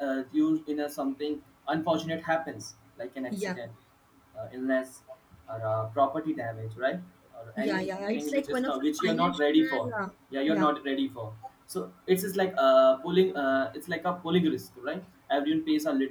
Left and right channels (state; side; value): identical; both; correlation 1.00